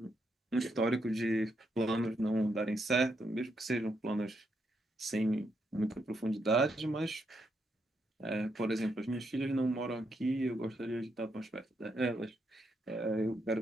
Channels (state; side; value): normal; both; correlation 0.79